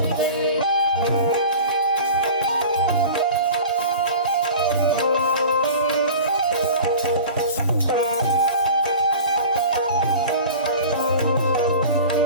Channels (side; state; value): both; inverted; correlation -0.38